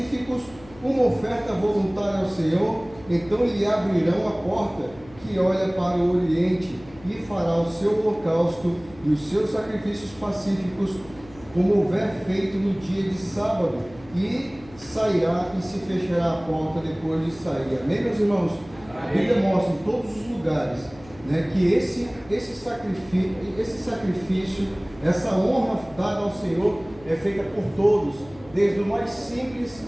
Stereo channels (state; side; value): noise; left; hum, 21 dB below the sound